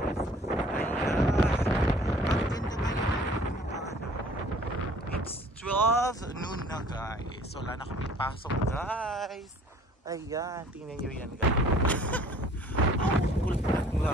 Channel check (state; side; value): normal; both; correlation 0.53